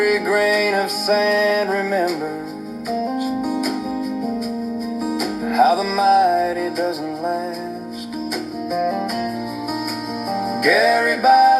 grain of sand remembers how the mighty doesn't last. Gary by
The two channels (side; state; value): both; identical; correlation 1.00